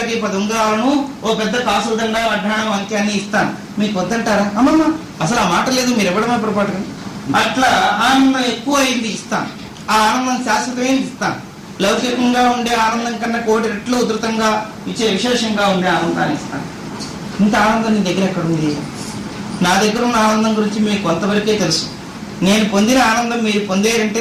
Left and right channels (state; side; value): identical; both; correlation 1.00